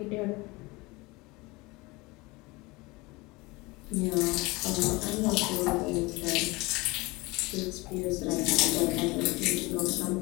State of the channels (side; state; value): right; quieter; 23.7 dB